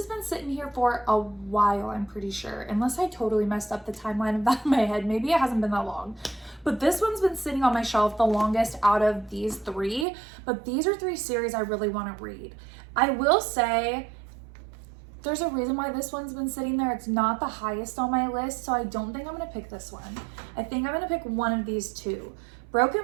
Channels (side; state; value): left; drops out; at 10.1 s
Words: been sitting here for a while, I'm pretty sure, unless I totally messed up the timeline of that in my head. Maybe it hasn't been that long. But this one's been sitting on my shelf the longest out of these 3. But these are 3 series I really want to read. I will say there's a reason why this one's been sitting there. It's not the highest on my list, so I don't think I'm going to pick this one. I think I'm going to pick one of these 2.